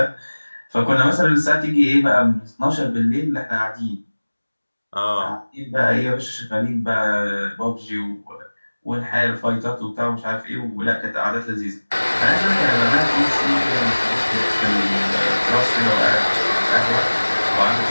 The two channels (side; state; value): both; inverted; correlation -1.00